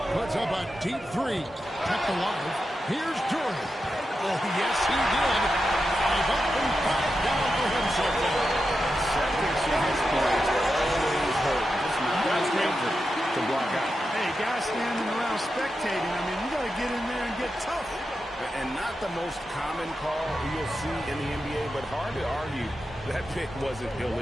Puts up a deep 3. Kept alive. Here's Jordan. Oh, yes, he did. 5 up and 5 down for him so far. Seconds in his points always hurt. Just not danger to block out. Hey, guys standing around spectating. I mean, you got to get in there and get tough. And not the most common call you'll see in the NBA, but hard to argue that pick wasn't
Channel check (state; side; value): normal; both; correlation 0.89